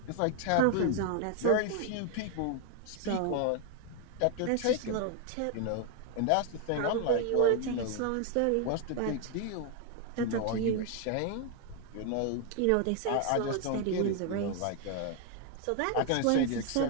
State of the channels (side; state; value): both; different; correlation 0.00